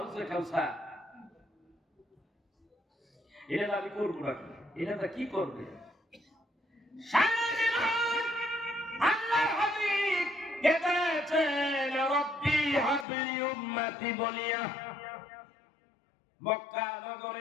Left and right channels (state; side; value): drops out; right; at 13.1 s